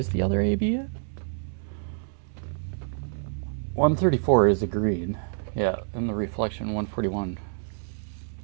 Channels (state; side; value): silent; left; 59 dB below the other